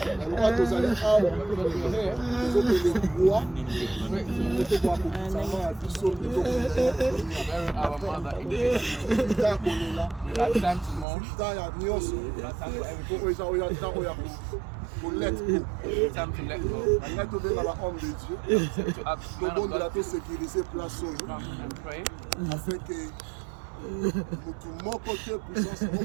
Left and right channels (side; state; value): left; drops out; at 11.1 s